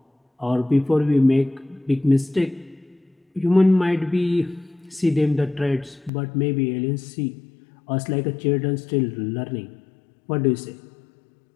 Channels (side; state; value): right; drops out; at 6.1 s